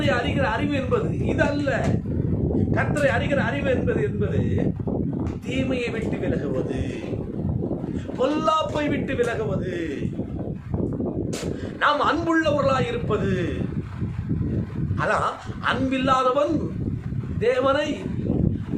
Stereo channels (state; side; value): identical; both; correlation 1.00